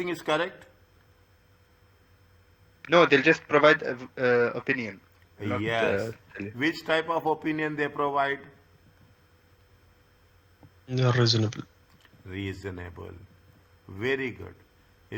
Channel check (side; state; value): both; identical; correlation 1.00